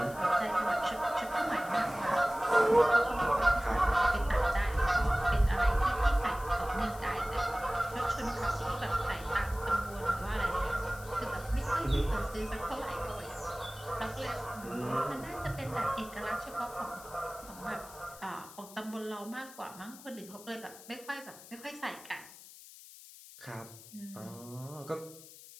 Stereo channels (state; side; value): noise; left; hiss, 18 dB below the sound